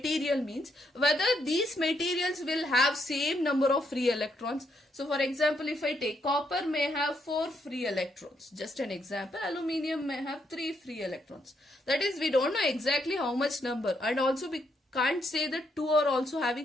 means whether these materials will have same number of free electrons. So for example, if I take copper may have 4 free electrons, just an example. Aluminium may have 3 free electrons. That is, we don't know exactly how much number, and also we can't say that 2 are also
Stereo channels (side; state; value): both; normal; correlation 0.76